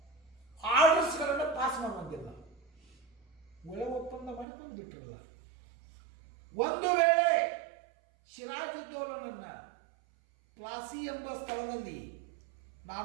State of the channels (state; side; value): drops out; left; at 4.5 s